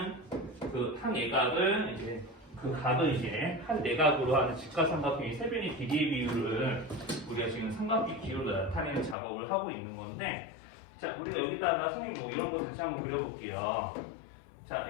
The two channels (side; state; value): right; drops out; at 9.2 s